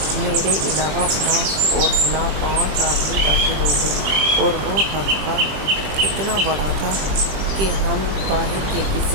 میرے علاوہ فلاں اور فلاں 5 آدمی داخل ہو گئے، اور وہ حلقہ اتنا بڑا تھا کہ ہم باہر کے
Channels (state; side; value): late; left; 20 ms